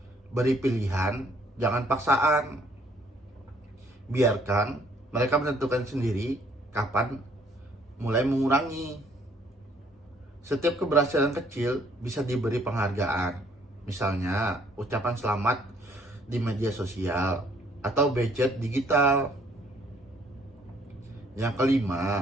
beri pilihan, jangan paksaan. Biarkan mereka menentukan sendiri kapan mulai mengurangi. Setiap keberhasilan kecil bisa diberi penghargaan. Misalnya, ucapan selamat di media sosial atau budget digital. Yang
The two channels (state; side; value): normal; both; correlation 0.63